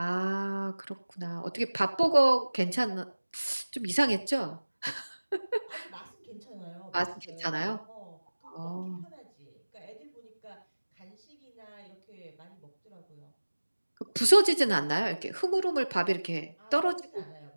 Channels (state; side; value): inverted; both; correlation -1.00